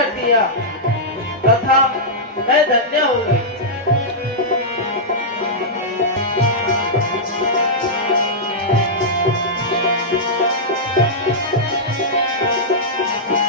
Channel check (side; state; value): both; normal; correlation -0.10